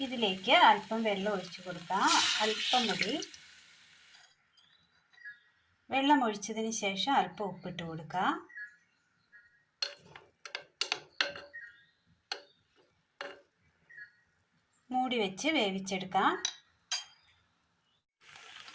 ഇതിലേക്ക് അല്പം വെള്ളം ഒഴിച്ചു കൊടുക്കാം. അല്പം മതി. വെള്ളം ഒഴിച്ചതിന് ശേഷം അല്പം ഉപ്പിട്ട് കൊടുക്കാം. മൂടി വെച്ച് വേവിച്ചെടുക്കാം.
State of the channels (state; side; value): identical; both; correlation 1.00